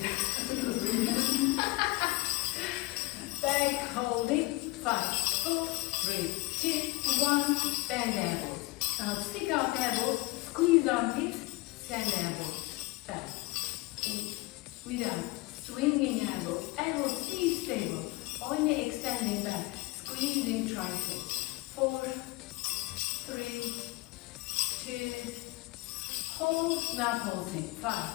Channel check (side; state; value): right; quieter; 20.8 dB